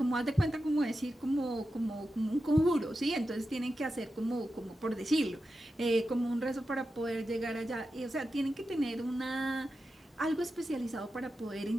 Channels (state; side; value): normal; both; correlation 0.90